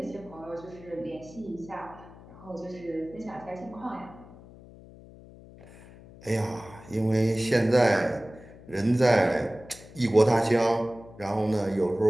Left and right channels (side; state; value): left; noise; hum, 20 dB below the sound